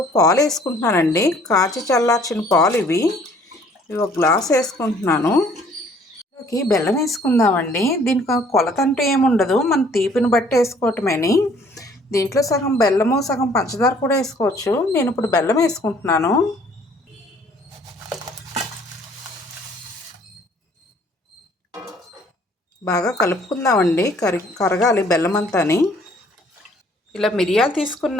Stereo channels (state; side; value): normal; both; correlation 0.58